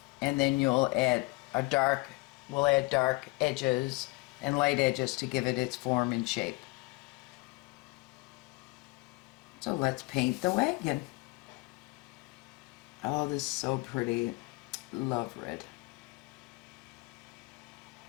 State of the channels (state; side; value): quieter; right; 24.9 dB